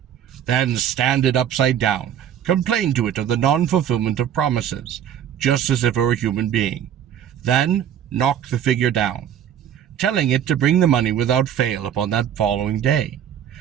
Then stand it upside down. Complain to it of the non-fulfillment of promises, just as if it were a human being. Then knock the figure down, telling it to bring the money without fail upon that following day.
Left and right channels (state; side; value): quieter; left; 9.6 dB